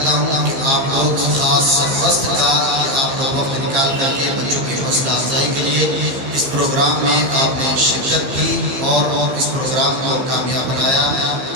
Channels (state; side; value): late; left; 15 ms